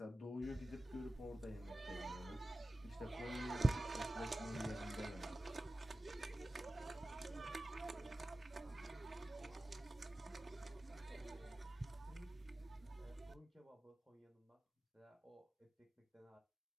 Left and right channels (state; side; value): normal; both; correlation 0.95